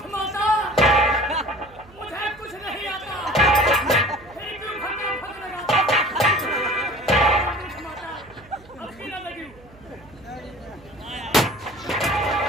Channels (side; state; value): right; noise; hum, 24 dB below the sound